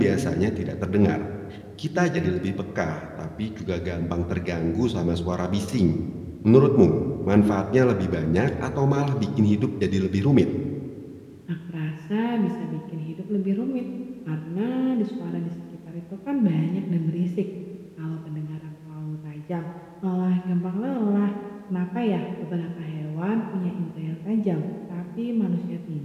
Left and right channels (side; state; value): both; identical; correlation 1.00